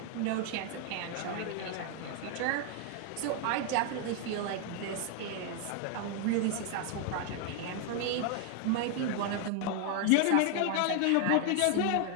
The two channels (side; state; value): both; different; correlation 0.00